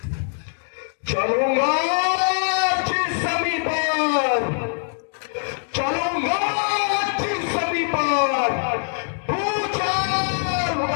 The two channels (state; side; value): silent; right; digital silence